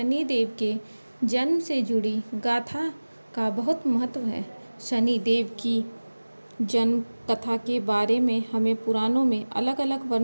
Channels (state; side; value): inverted; both; correlation -1.00